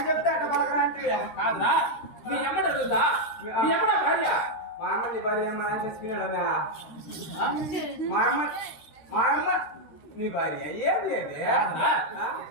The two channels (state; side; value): late; right; 13 ms